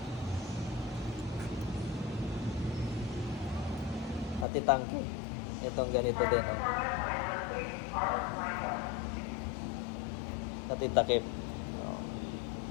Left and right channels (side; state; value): right; drops out; at 4.5 s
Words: Pati tangke. Itong ganito din o. Pati takip.